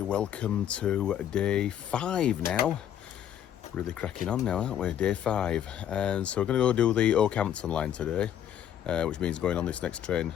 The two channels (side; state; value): right; quieter; 10.2 dB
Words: welcome to day 5 now. Really cracking on now, aren't we? Day 5. And so we're going to go do the Okehampton line today, which means going on this next train